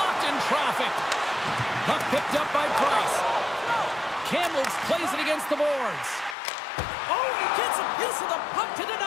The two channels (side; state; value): right; drops out; at 6.4 s